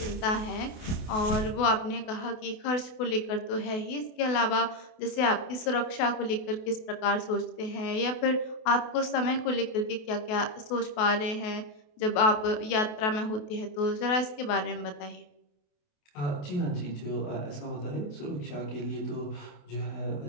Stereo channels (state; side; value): late; right; 28 ms